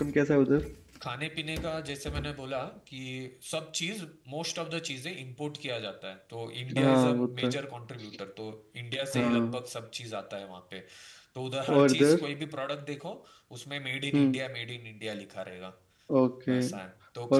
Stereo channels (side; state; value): both; identical; correlation 1.00